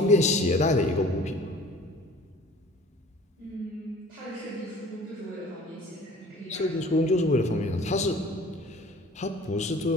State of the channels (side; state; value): both; normal; correlation 0.47